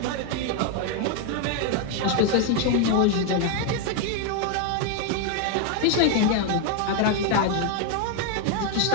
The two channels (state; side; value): different; both; correlation 0.01